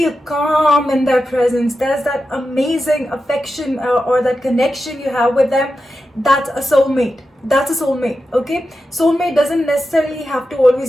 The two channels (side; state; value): both; normal; correlation 0.91